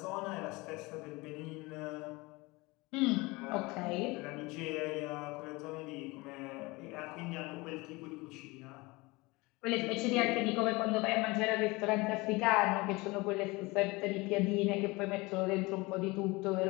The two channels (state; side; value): quieter; right; 23.6 dB